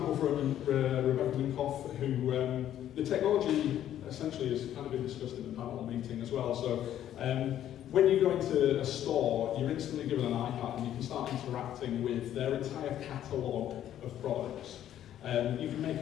from Rebecca Minkoff, who the technology essentially has kind of been discussed in the panel meeting as well. So when you go into a store, you're instantly given an iPad and you can start interacting with their entire catalogue of products. You can make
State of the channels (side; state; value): right; quieter; 11.4 dB